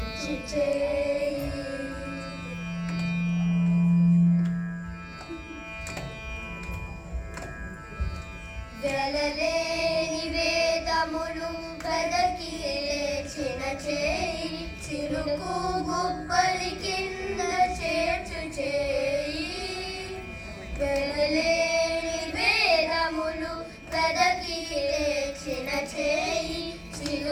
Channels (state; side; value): identical; both; correlation 1.00